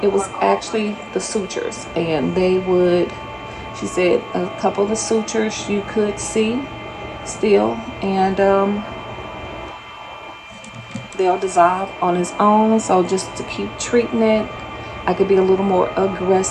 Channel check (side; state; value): both; identical; correlation 1.00